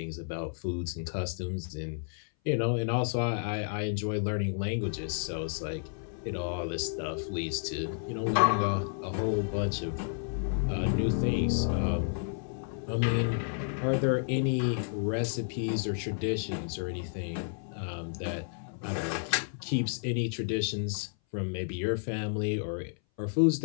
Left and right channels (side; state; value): right; silent; 57 dB below the other